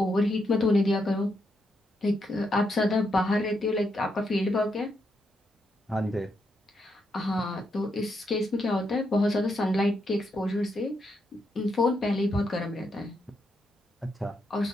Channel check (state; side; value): normal; both; correlation 0.80